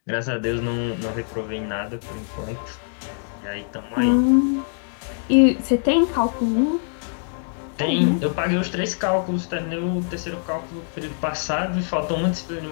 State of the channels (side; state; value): right; silent; digital silence